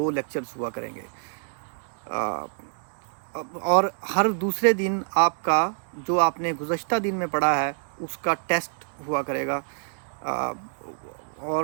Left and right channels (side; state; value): left; silent; digital silence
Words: لیکچرز ہوا کریں گے، اور ہر دوسرے دن آپ کا جو آپ نے گزشتہ دن میں پڑھا ہے اس کا ٹیسٹ ہوا کرے گا،